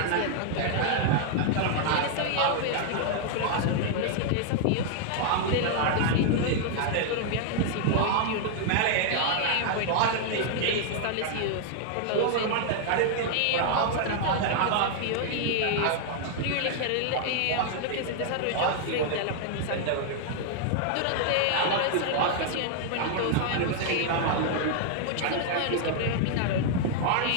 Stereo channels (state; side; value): different; both; correlation 0.00